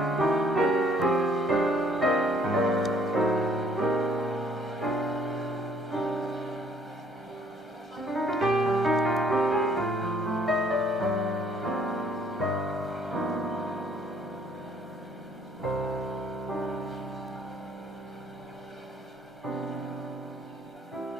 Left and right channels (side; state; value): both; normal; correlation 0.62